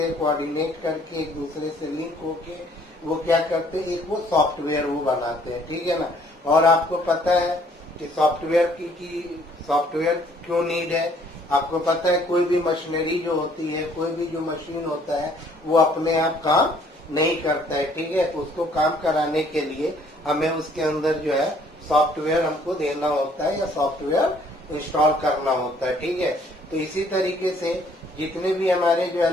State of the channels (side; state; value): both; normal; correlation 0.61